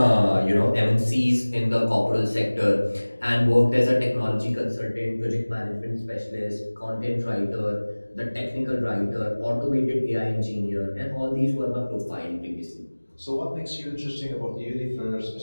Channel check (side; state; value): both; inverted; correlation -1.00